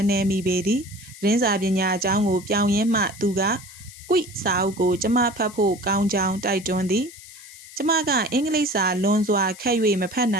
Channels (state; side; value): noise; left; hiss, 18 dB below the sound